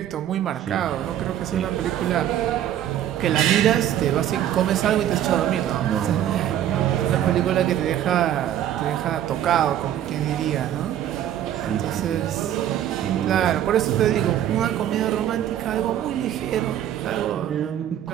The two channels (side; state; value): left; quieter; 11.1 dB